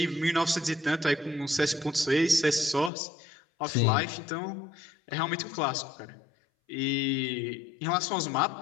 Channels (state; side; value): drops out; right; at 2.9 s